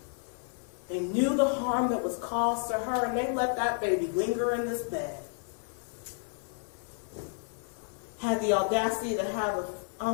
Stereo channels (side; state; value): right; silent; 57 dB below the other